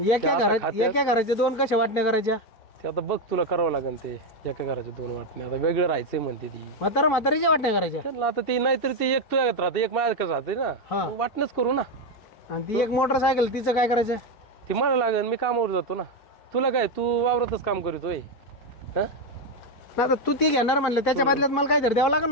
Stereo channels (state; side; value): late; right; 4.5 ms